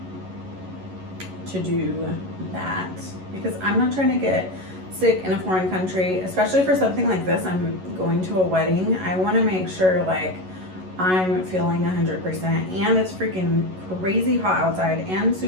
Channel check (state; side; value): late; left; 11 ms